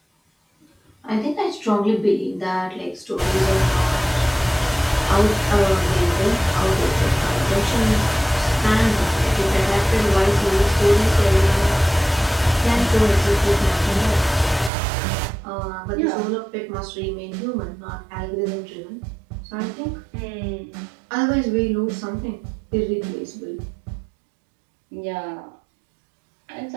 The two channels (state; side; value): drops out; left; at 14.7 s